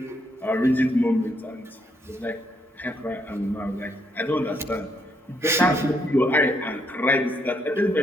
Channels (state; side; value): normal; both; correlation 0.75